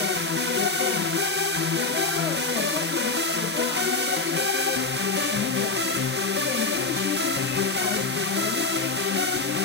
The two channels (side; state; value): right; quieter; 3.5 dB